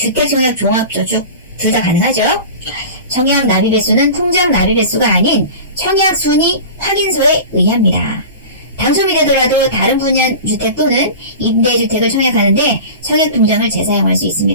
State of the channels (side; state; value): both; inverted; correlation -0.34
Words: 종합저축 둘 다 가능하죠. 청약 납입 횟수는 통장 납입 횟수가 아닌 청약 순위 확인서에 의합니다. 당첨이 되더라도 다른 분야 주택 또는 임대주택을 청약하는데 청약통장을 재사용할 수